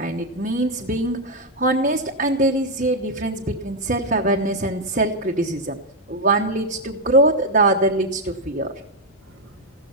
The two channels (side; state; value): both; normal; correlation 0.02